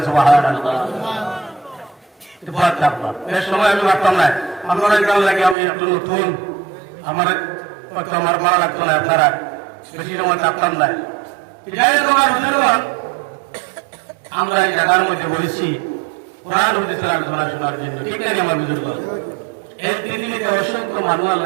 সুবহানাল্লাহ। এটা ভয় থাকবা, এর সময় আমি ভাবতাম না আপনারা কেমন লাগে, আমি একটু নতুন, আমার আমার ভালো লাগতো না, আপনারা বেশি সময় থাকতাম না। যাই হোক আমার বুঝলাম, আমরা এই জায়গার মধ্যে বলেছি কোরআন হাদিসের আলোচনা শোনার জন্য। ঠিক আছে আমার বুজুর্গ, এই পৃথিবীতে অসংখ্য মানুষ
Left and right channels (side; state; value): left; drops out; at 5.6 s